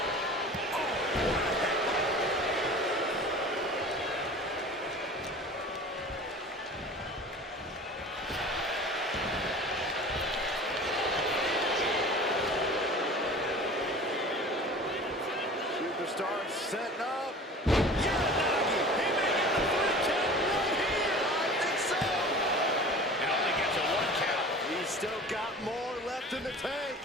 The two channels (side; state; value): both; normal; correlation 0.40